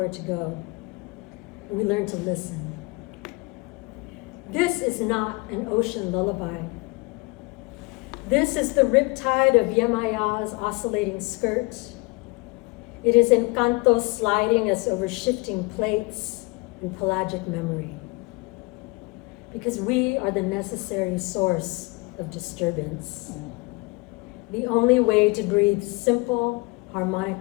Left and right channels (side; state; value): right; quieter; 26.2 dB